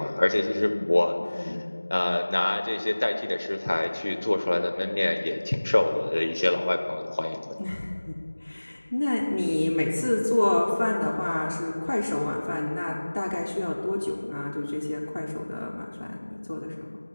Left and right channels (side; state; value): both; inverted; correlation -1.00